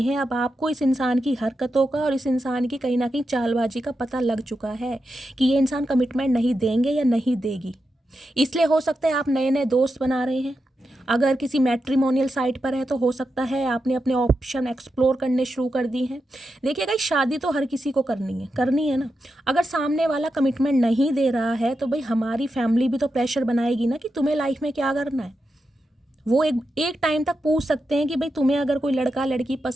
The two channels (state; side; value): normal; both; correlation 0.88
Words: हैं। अब आपको इस इंसान की हरकतों का और इस इंसान की कहीं ना कहीं चालबाजी का पता लग चुका है कि ये इंसान कमिटमेंट नहीं देंगे या नहीं देगी। इसलिए हो सकता है आप नए नए दोस्त बना रहे हैं, अगर किसी मैट्रिमोनियल साइट पर है तो हो सकता है आपने अपने ऑप्शन एक्सप्लोर करने शुरू कर दी हैं। देखिए गाइस, शादी तो हर किसी को करनी है ना। अगर सामने वाला कमिटमेंट नहीं दे रहा है तो भाई हमारी फैमिली भी तो प्रेशर बनाएगी ना कि तुम्हें लाइफ में क्या करना है। वो एक टाइम तक पूछ सकते हैं कि भाई तुम्हें अगर कोई लड़का लड़की